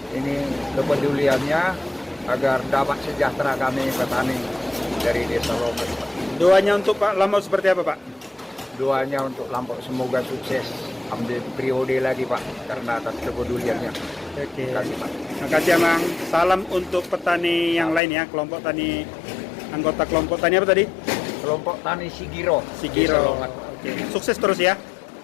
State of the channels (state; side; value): drops out; right; at 18.0 s